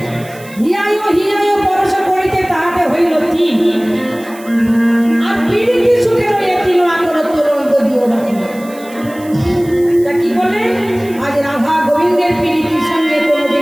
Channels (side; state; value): right; noise; hiss, 21 dB below the sound